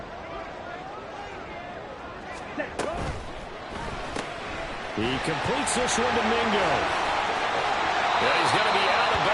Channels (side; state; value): both; identical; correlation 1.00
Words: He completes this one to Mingo. Yeah, he's going to be out of